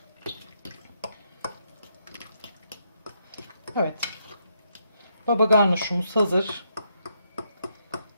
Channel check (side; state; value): both; inverted; correlation -0.77